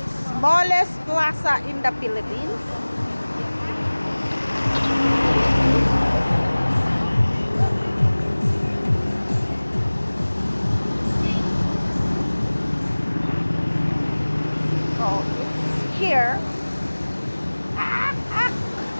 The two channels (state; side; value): inverted; both; correlation -1.00